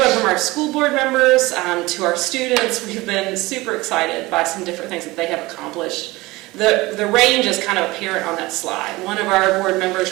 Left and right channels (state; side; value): quieter; left; 20.8 dB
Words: from our school board members to our students, we've been super excited by some different things that they have accomplished. The range is kind of apparent on that slide. One of our board members,